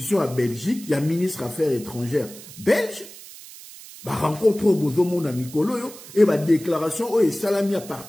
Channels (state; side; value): noise; right; hiss, 17 dB below the sound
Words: à Belgique, il y a ministre Affaires étrangères belge, bah rencontre au Bozomo na Mikolo, et bah déclaration, oh, et salami à